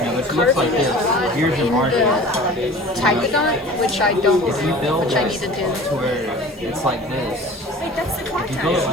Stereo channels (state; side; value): normal; both; correlation 0.41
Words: looks like this. Here's your margin. Typodont, which I don't, If you build which I need to do. to where it's like this. Wait, that's the If you contact. build it